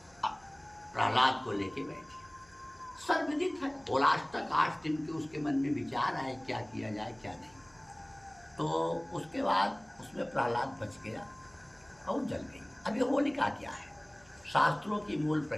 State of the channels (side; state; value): right; noise; hum, 30 dB below the sound